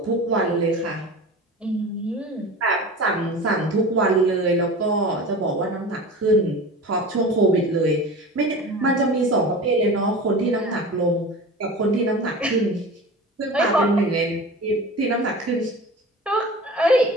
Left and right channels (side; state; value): both; normal; correlation 0.35